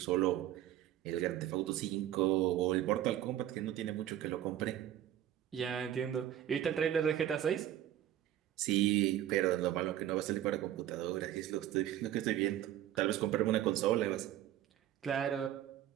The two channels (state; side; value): quieter; left; 12.0 dB